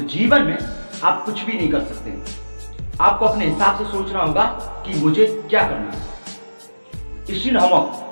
जीवन में आप कुछ भी नहीं कर सकते। आपको अपने हिसाब से सोचना होगा कि मुझे क्या करना है। स्टीफन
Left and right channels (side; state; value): both; inverted; correlation -1.00